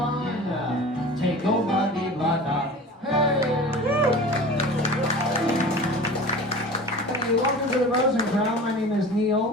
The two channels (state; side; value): normal; both; correlation 0.38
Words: take old Buggy Bugger. Hey! Hey, welcome to the Rosencrown. My name is